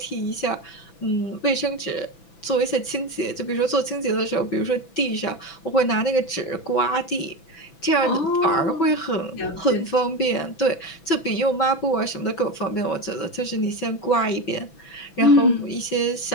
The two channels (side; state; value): right; late; 6.0 ms